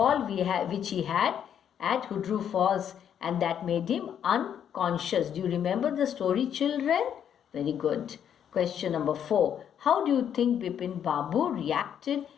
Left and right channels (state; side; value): quieter; right; 9.0 dB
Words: which he had at Hudru Falls, and that made him unconscious. Do you remember the story, children? Very good. Question number 4. How do you think Bipin Babu reacted